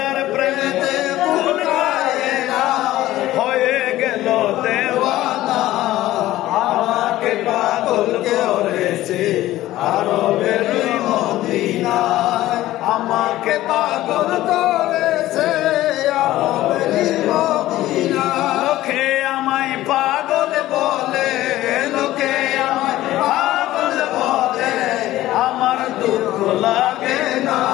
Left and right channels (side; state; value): right; quieter; 15.4 dB